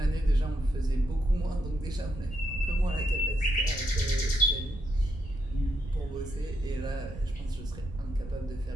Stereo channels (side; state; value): right; noise; rumble, 15 dB below the sound